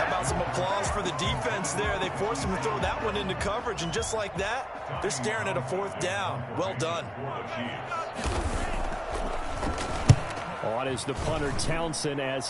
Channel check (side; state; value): both; identical; correlation 1.00